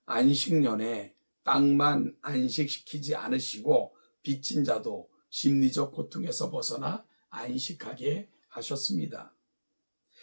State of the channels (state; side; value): inverted; both; correlation -1.00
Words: 안식년에 땅만 안식시키지 않으시고 빚진 자도 심리적 고통에서 벗어나 안식하게 하셨습니다.